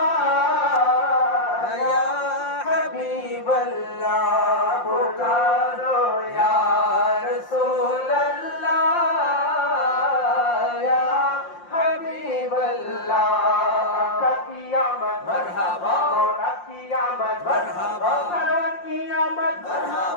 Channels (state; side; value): late; right; 5.7 ms